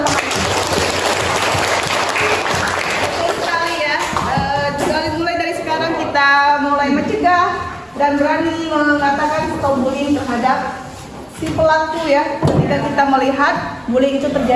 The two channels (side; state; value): both; identical; correlation 1.00